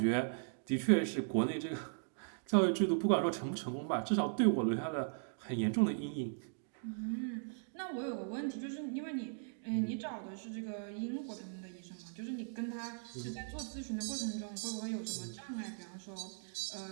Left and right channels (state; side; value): silent; left; digital silence